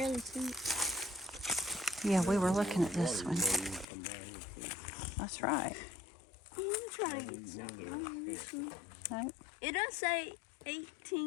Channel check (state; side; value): drops out; right; at 3.9 s